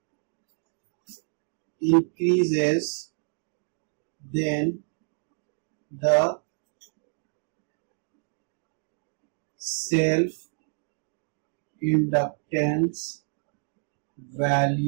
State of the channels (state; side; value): silent; left; digital silence